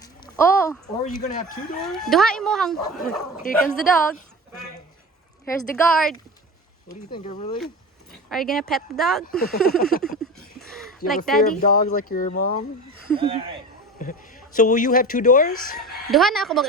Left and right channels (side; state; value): both; normal; correlation 0.31